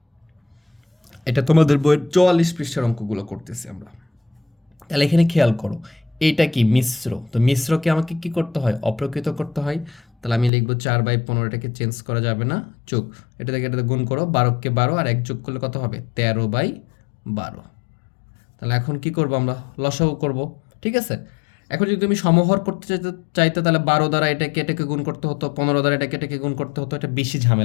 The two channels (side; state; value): right; drops out; at 10.5 s